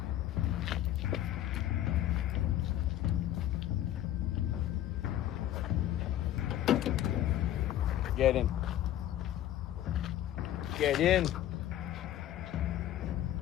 Get in. Get in.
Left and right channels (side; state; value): right; quieter; 12.5 dB